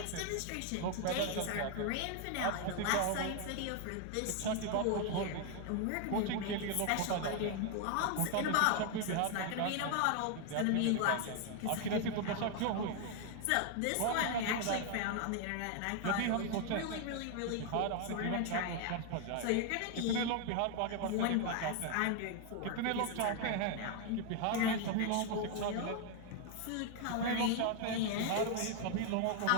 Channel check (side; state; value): both; different; correlation 0.01